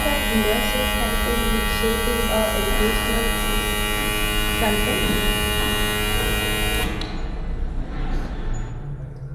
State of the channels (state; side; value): identical; both; correlation 1.00